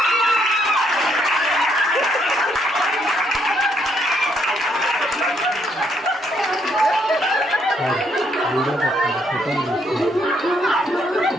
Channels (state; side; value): normal; both; correlation 0.72